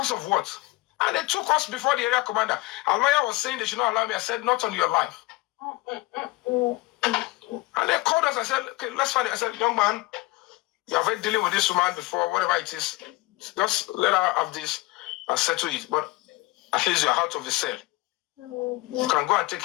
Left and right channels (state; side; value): quieter; right; 21.4 dB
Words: of what? And they took us before the area commander. Our lawyer was saying they should not allow me. I said, not on your life. And they called us. I said, okay, let's find it. I said, young man, you have been dealing with this woman before, whatever it is. Just let her have this and settle it. But at least you're out of the cell. You can go and take